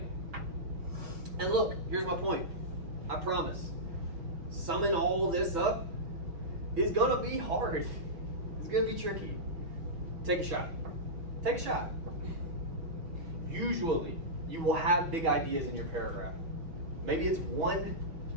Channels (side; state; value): left; late; 6.1 ms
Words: And look, here's my point. I promise. Summing all this up is gonna be hard. It's gonna be tricky. Take a shot. Take a shot. Usually, you will have big ideas in your paragraph. Maybe it's one,